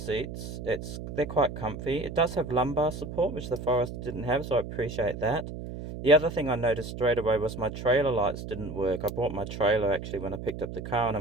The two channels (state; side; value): noise; right; hum, 8 dB below the sound